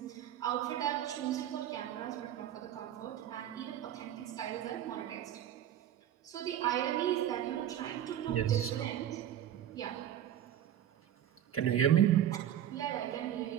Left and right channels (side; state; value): left; quieter; 10.9 dB